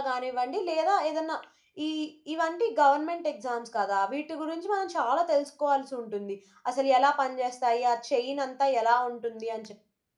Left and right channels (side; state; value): both; identical; correlation 1.00